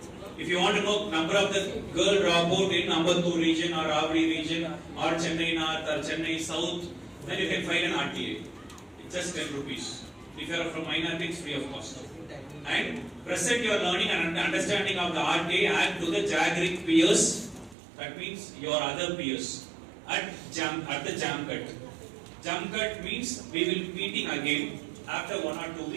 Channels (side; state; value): left; drops out; at 17.8 s